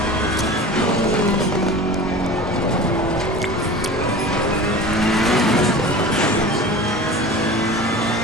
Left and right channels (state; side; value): normal; both; correlation 0.36